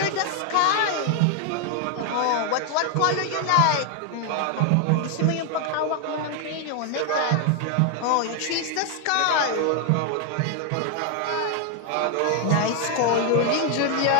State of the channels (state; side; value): different; both; correlation 0.00